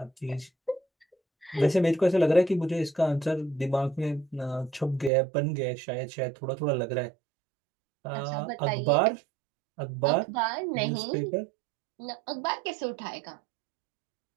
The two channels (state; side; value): drops out; left; at 5.1 s